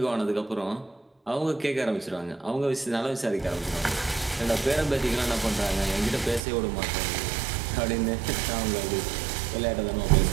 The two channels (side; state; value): left; drops out; at 6.4 s